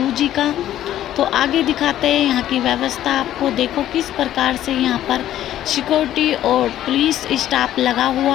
का। तो आगे दिखाते हैं यहाँ की व्यवस्था आपको। देखो किस प्रकार से यहाँ पर सिक्योरिटी और पुलिस स्टाफ लगा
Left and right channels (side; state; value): right; quieter; 12.4 dB